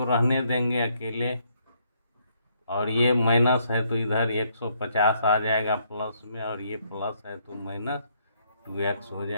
रहने देंगे अकेले, और ये माइनस है तो इधर 150 आ जाएगा प्लस में, और ये प्लस है तो माइनस 2x हो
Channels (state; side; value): inverted; both; correlation -0.71